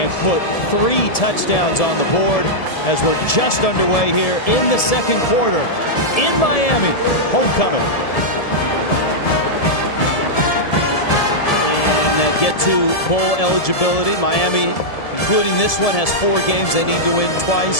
put 3 touchdowns on the board as we're just underway here in the second quarter in Miami. Homecoming. And get to bowl eligibility. Miami, including this one, has 4 games they need to win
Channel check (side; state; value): right; late; 1.7 ms